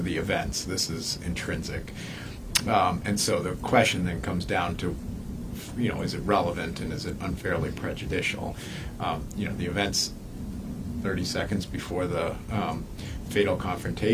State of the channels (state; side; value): identical; both; correlation 1.00